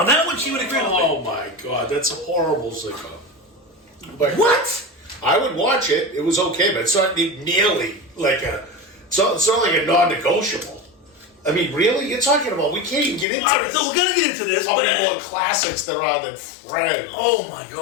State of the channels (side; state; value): right; drops out; at 13.2 s